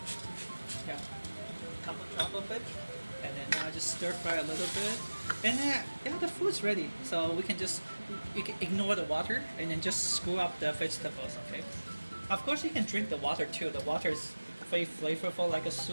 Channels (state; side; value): inverted; both; correlation -1.00